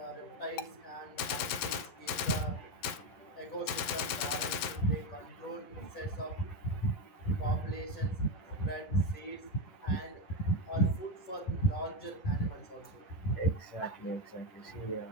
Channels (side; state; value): right; late; 11 ms